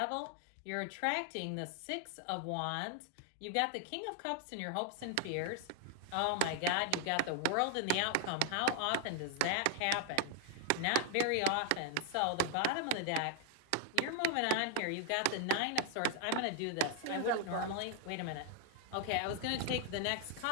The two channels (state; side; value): different; both; correlation 0.00